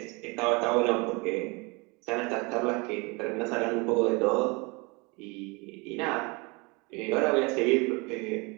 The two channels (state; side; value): quieter; left; 28.0 dB